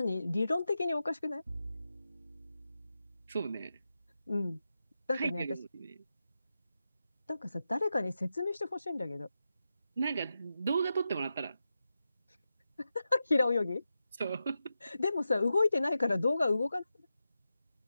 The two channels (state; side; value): inverted; both; correlation -0.90